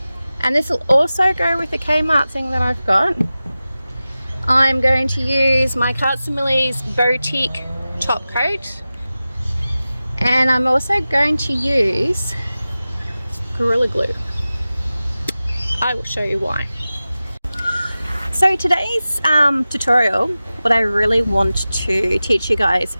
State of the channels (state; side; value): inverted; both; correlation -0.96